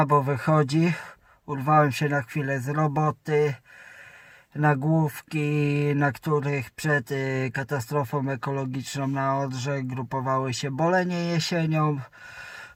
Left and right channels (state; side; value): identical; both; correlation 1.00